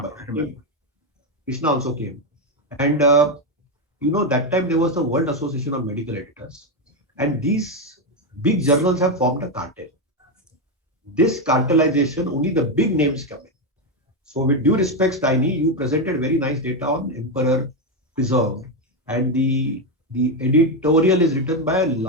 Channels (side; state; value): both; normal; correlation 0.07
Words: Krishna also came. And that time there was the World Association of Medical Editors. And these big journals have formed a cartel. This cartelization, only the big names come in. So with due respect, Tiny, you presented very nice data on Emperor Preserved, and the editorial is written by a